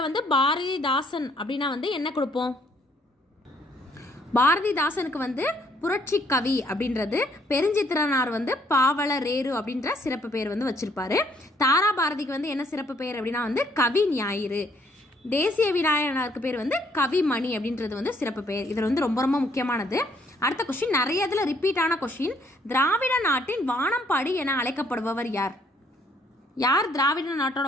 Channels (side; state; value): both; normal; correlation 0.66